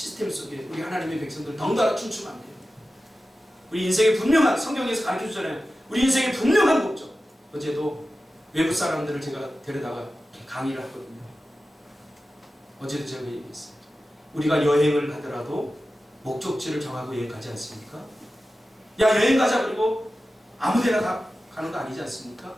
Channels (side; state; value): both; normal; correlation 0.94